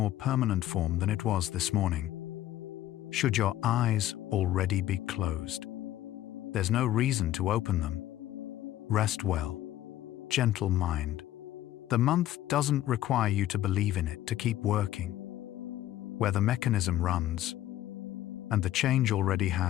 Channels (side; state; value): right; quieter; 13.5 dB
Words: permanent form than it was this morning. Should your eyes already be closed, there's no reason to open them. Rest well, gentle mind. The month doesn't require you to believe in it to keep working. Where the mechanism runs, and the change already